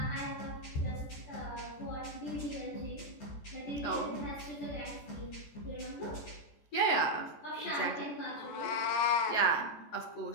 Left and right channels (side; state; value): right; late; 14 ms